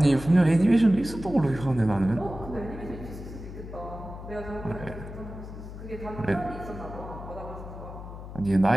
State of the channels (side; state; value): left; noise; hum, 11 dB below the sound